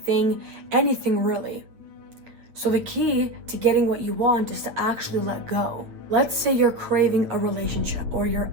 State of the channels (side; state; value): left; late; 9.0 ms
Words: anything really. So the key to getting what you want is to actually let go. Let's say you're craving a relationship or you're